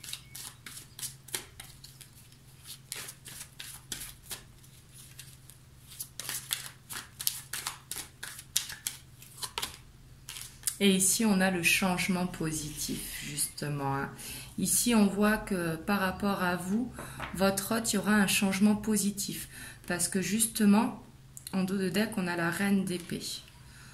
Et ici, on a le changement positif, justement. Ici, on voit que par rapport à vous, votre hôte, il y aura un changement positif. Parce que justement, en dos de deck, on a la reine d'épée.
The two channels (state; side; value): identical; both; correlation 1.00